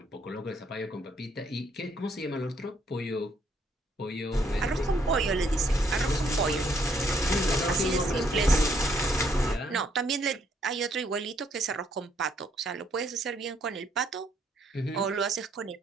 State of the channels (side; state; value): both; normal; correlation 0.69